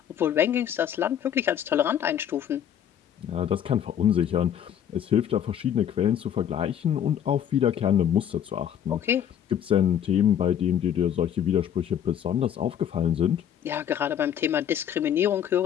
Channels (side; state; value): right; quieter; 9.5 dB